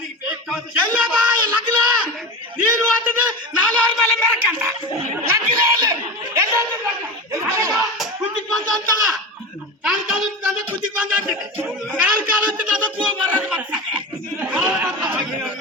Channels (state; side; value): normal; both; correlation 0.25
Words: ಎಲ್ಲಪ್ಪ ಲಗ್ನ ನೀನು ಅಂತಂದ್ರೆ ನಾನು ಅವ್ರ ಮೇಲೆ ಮೆರಕಂತ ಲಗ್ನ ಕುತ್ತಿಗೆ ಬಂದ ಅಂತಲ್ಲ ಕಾಲ್ ಕಾಲು ಅಂದ್ರೆ ಕುತ್ತಿಗೆ ಬಂದ ಅಂತಿದೆ ಕಾಲ್ ಕಾಲು ಅಂತ ಅದಕ್ಕೂ ಬರೋದು